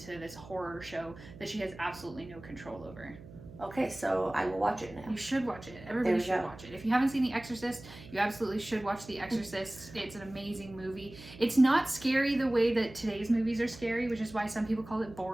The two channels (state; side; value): noise; right; hum, 18 dB below the sound